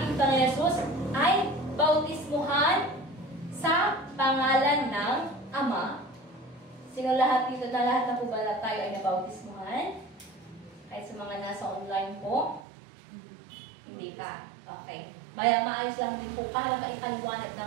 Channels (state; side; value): drops out; left; at 12.7 s